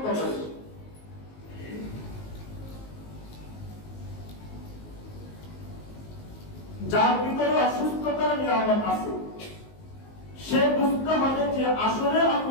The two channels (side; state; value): right; late; 19 ms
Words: তত বেশি। যার ভিতরে অসুস্থতার নিয়ামত আছে সে বুঝতে হবে যে আসলে